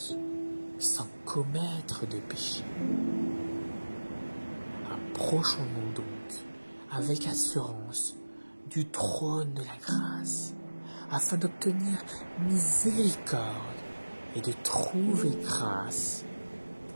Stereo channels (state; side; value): inverted; both; correlation -1.00